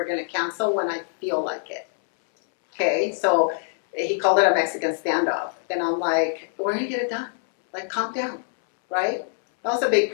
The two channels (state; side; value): silent; right; 63 dB below the other